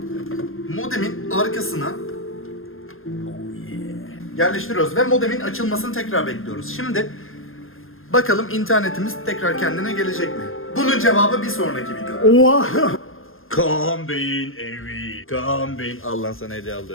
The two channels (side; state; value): right; late; 0.60 ms